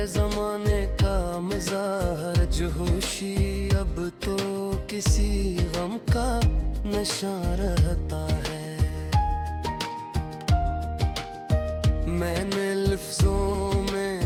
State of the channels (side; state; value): both; identical; correlation 1.00